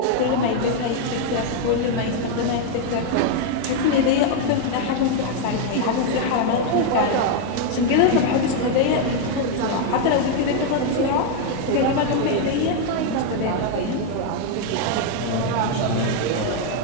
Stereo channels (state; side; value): different; both; correlation 0.01